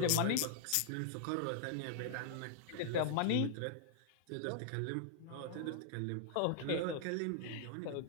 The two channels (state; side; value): different; both; correlation -0.01